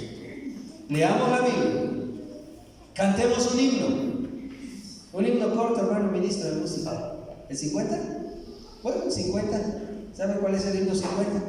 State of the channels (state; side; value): identical; both; correlation 1.00